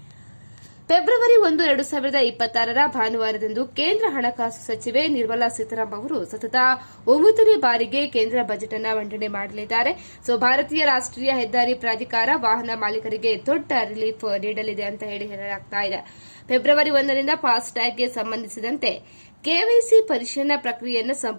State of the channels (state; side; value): inverted; both; correlation -1.00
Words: ಫೆಬ್ರವರಿ 1, 2026 ಭಾನುವಾರದಂದು ಕೇಂದ್ರ ಹಣಕಾಸು ಸಚಿವೆ ನಿರ್ಮಲಾ ಸೀತಾರಾಮನ್ ಅವರು ಸತತ 9ನೇ ಬಾರಿಗೆ ಕೇಂದ್ರ ಬಜೆಟ್ ಅನ್ನು ಮಂಡನೆ ಮಾಡಲಿದ್ದಾರೆ. ಭಾರತೀಯ ರಾಷ್ಟೀಯ ಹೆದ್ದಾರಿ ಪ್ರಾಧಿಕಾರ ವಾಹನ ಮಾಲೀಕರಿಗೆ ದೊಡ್ಡ ರಿಲೀಫ್ ನೀಡಲಿದೆ ಅಂತ ಹೇಳಲಾಗ್ತಾ ಇದೆ. ಫೆಬ್ರವರಿ 1ರಿಂದ ಫಾಸ್ಟ್ಯಾಗ್ಗೆ ಸಂಬಂಧಿಸಿದಂತೆ ಕೆವೈಸಿ ಪರಿಶೀಲನಾ ಪ್ರಕ್ರಿಯೆಯನ್ನು